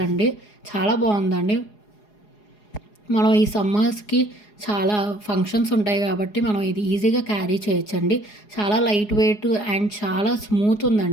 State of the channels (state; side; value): late; right; 4.8 ms